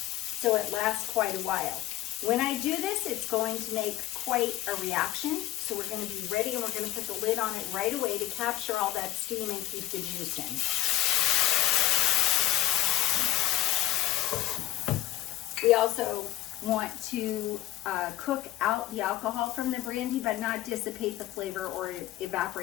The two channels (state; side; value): quieter; right; 15.4 dB